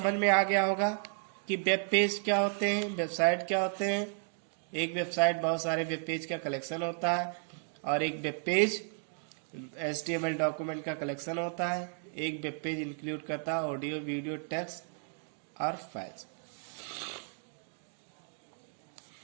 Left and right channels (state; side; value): silent; left; 55 dB below the other